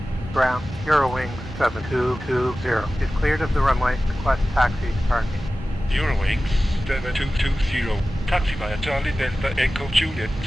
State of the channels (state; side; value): normal; both; correlation 0.96